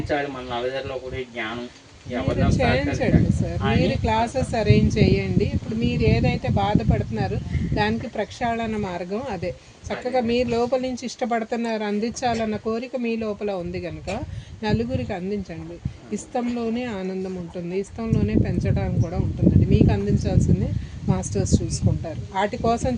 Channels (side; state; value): both; identical; correlation 1.00